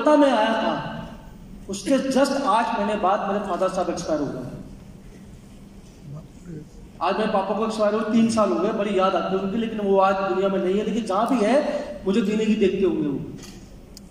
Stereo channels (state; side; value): identical; both; correlation 1.00